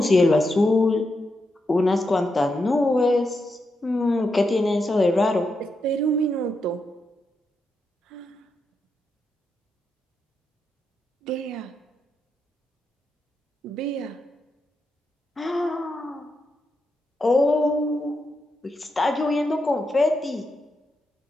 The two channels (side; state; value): both; normal; correlation 0.85